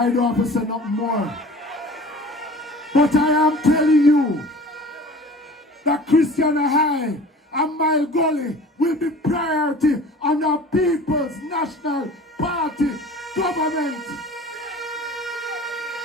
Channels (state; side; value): normal; both; correlation 0.43